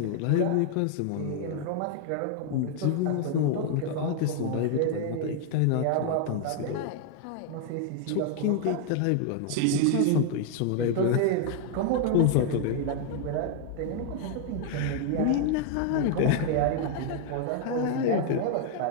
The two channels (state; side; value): different; both; correlation 0.00